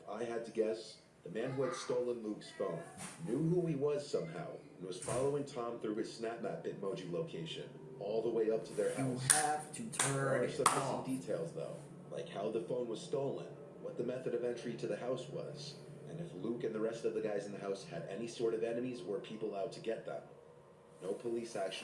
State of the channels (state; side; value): identical; both; correlation 1.00